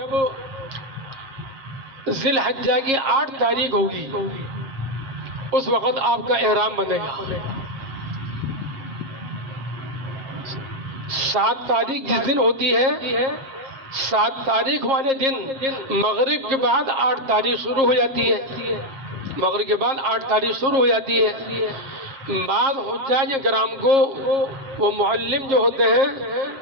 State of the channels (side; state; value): left; late; 7.4 ms